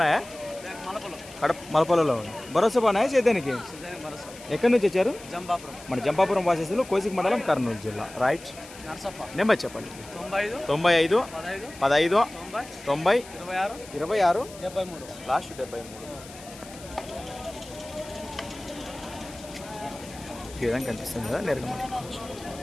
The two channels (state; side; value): noise; left; hiss, 18 dB below the sound